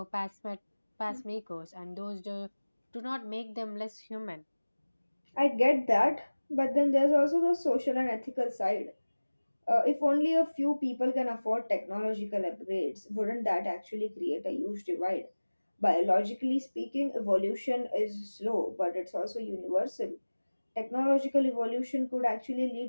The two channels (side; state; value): both; inverted; correlation -1.00